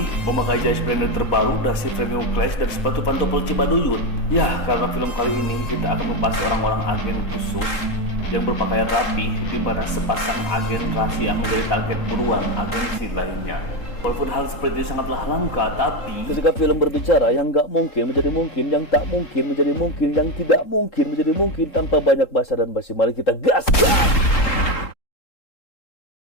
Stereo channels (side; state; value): right; late; 3.8 ms